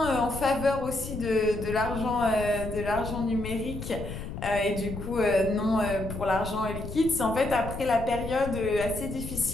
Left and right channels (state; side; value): noise; left; rumble, 8 dB below the sound